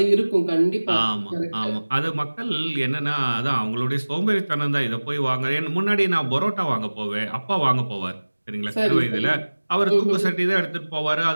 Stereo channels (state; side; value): inverted; both; correlation -1.00